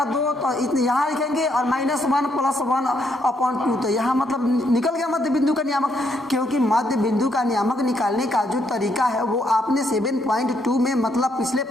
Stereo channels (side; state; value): both; normal; correlation 0.74